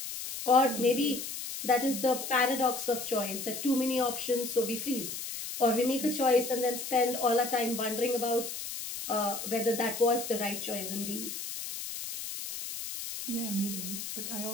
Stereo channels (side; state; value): left; noise; hiss, 7 dB below the sound